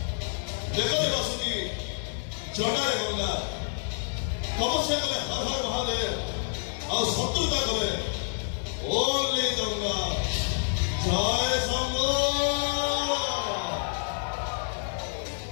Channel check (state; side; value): silent; right; 57 dB below the other